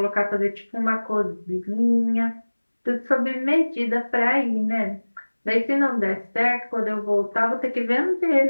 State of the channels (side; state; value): both; inverted; correlation -1.00